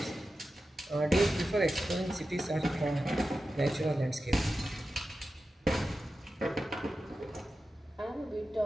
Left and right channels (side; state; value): both; normal; correlation 0.92